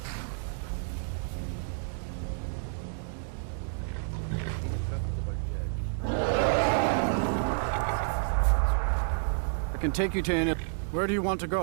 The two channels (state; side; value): silent; left; digital silence